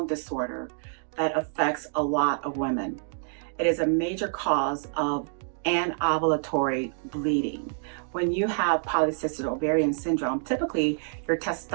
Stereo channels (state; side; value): silent; left; 60 dB below the other